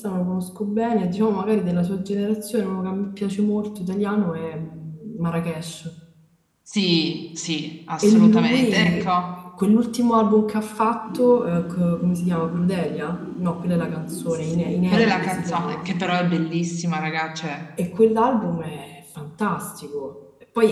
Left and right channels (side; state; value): both; identical; correlation 1.00